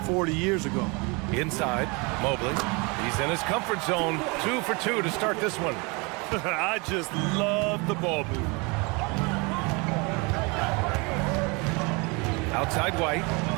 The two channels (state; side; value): quieter; left; 29.0 dB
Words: 40 years ago. Inside, Mobley. He's in his comfort zone. 2 for 2 to start this one. I just love the ball movement. Outside White.